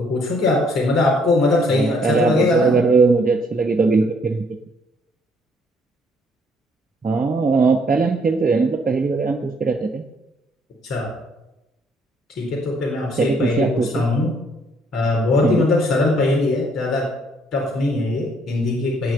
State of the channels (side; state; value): both; normal; correlation 0.66